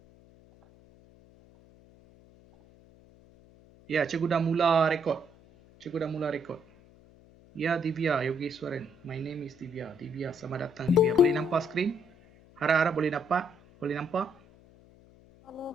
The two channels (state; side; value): noise; left; hum, 26 dB below the sound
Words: Ya, cikgu dah mula rekod. Cikgu dah mula rekod. Ya, Divya Yogeswaran. My name is Divya. Divya, selamat datang Divya. Boleh nampak skrin? Harap-harap boleh dapat? Boleh nampak?